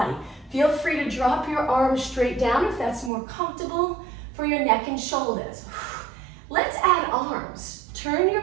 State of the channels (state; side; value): drops out; left; at 3.1 s